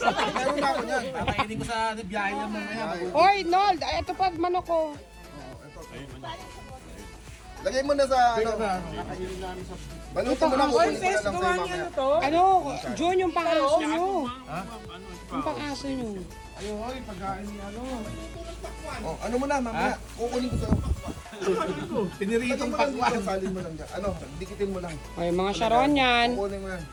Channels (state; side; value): identical; both; correlation 1.00